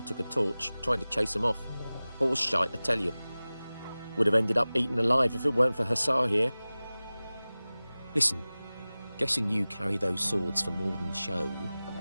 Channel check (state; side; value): inverted; both; correlation -0.98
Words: took a torch, trying to chase them off. Horse shite, I tell you. Would have ended up eaten alive if it weren't for Hussar here. Listen, guessing you carry those swords for more than show.